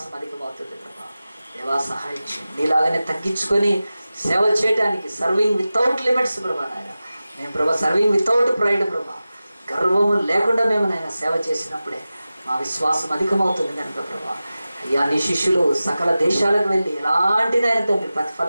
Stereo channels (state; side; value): inverted; both; correlation -0.95